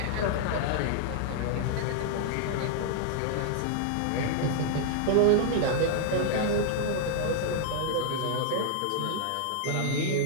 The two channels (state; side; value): different; both; correlation -0.01